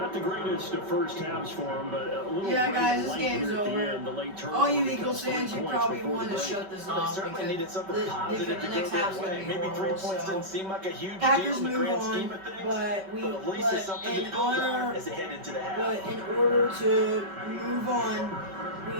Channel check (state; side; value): late; left; 5.2 ms